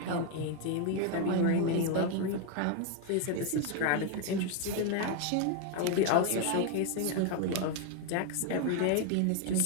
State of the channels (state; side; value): different; both; correlation 0.01